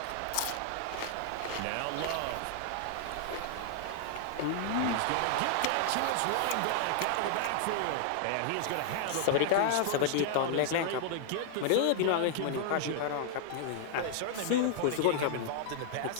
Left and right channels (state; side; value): different; both; correlation -0.01